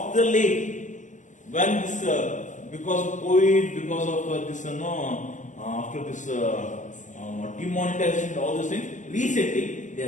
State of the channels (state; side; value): late; right; 0.36 ms